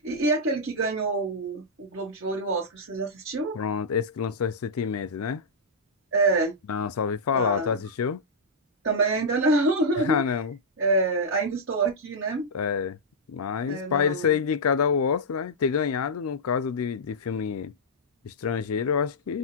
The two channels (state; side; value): normal; both; correlation -0.09